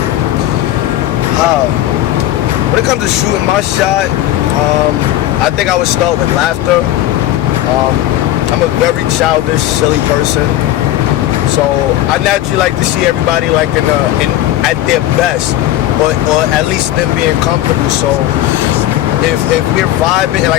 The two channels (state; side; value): quieter; right; 13.9 dB